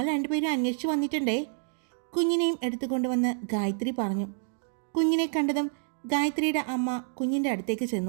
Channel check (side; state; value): left; silent; digital silence